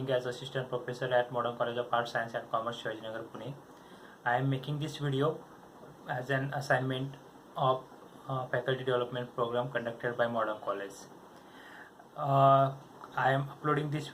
as Assistant Professor at Modern College of Arts, Science and Commerce, Shivajinagar, Pune. I am making this video as an assignment of faculty development program conducted by Modern College. I am uploading this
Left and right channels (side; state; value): both; identical; correlation 1.00